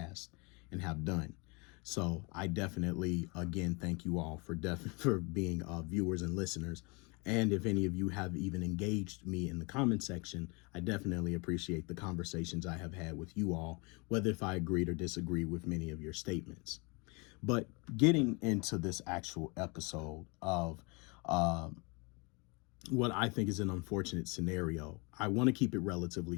and have done. So I definitely, again, thank you all for being viewers and listeners. And if any of you have even engaged me in the comment section, I definitely appreciate the conversations I have had with you all, whether if I agreed or disagreed with many of your statements. But getting into this actual episode of what I think is an unfortunate scenario, I want to keep it relatively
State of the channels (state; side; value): quieter; right; 29.6 dB